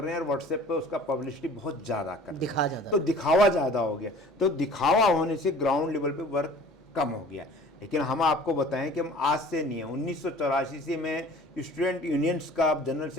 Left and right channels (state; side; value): normal; both; correlation 0.47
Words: हैं और व्हाट्सएप पे उसका पब्लिसिटी बहुत ज्यादा कर रहे हैं, तो दिखावा ज्यादा हो गया। तो दिखावा होने से ग्राउंड लेवल पे वर्क कम हो गया। लेकिन हम आपको बताएं कि हम आज से नहीं है, 1984 से मैं स्टूडेंट यूनियंस का जनरल